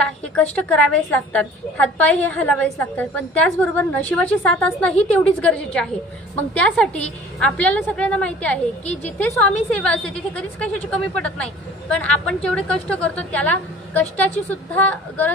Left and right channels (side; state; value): both; normal; correlation 0.48